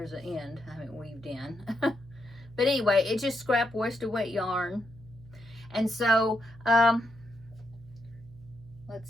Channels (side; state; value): right; noise; hum, 20 dB below the sound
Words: an end I haven't weaved in. But anyway, it's just scrap worsted weight yarn. And so, let's